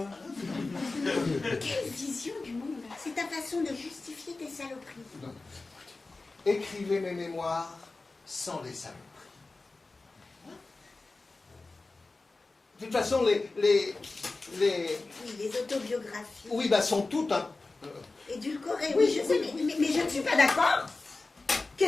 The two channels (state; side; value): quieter; right; 3.5 dB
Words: Quelle vision du monde. C'est ta façon de justifier tes saloperies. Non. Écrivez mes mémoires sans les saloperies. De toute façon, les Oui, les autobiographies. oui, sont toutes un... Édulcorées, oui, je sais, mais je ne suis pas d'accord.